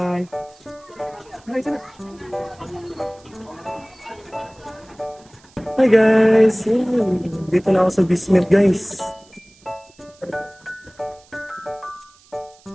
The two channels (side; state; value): right; noise; hiss, 28 dB below the sound